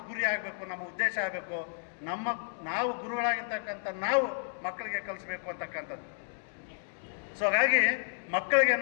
ಗುರಿ ಆಗಬೇಕು, ನಮ್ಮ ಉದ್ದೇಶ ಆಗಬೇಕು. ನಾವು ಗುರುಗಳಾಗಿರ್ತಕ್ಕಂಥ ನಾವು ಮಕ್ಕಳಿಗೆ ಕಲಿಸ್ಬೇಕು ಅಂತಕ್ಕಂಥದ್ದು. ಸೊ ಹಾಗಾಗಿ ಮಕ್ಕಳಿಗೆ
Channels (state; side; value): silent; right; digital silence